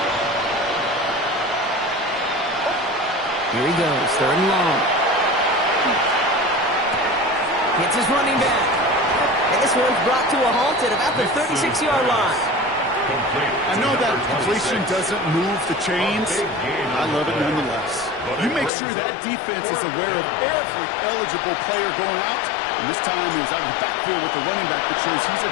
Here he goes, 3rd and long. Hits his running back. And this one's brought to a halt at about the 36-yard line. I know that completion doesn't move the chains. I love it nonetheless. You make sure that defense is aware of every eligible player going out. And this time it was out of the backfield with the running back that shows he's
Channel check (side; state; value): right; drops out; at 18.7 s